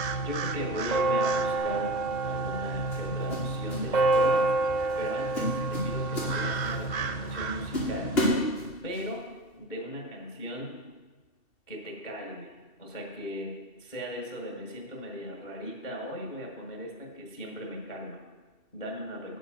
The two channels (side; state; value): right; late; 2.7 ms